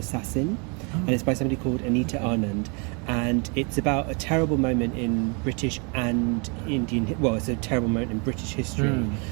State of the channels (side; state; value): left; quieter; 34.0 dB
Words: And it's by somebody called Anita Anand, and it's about a terrible moment in British and Indian. Well, it's a terrible moment in British history, and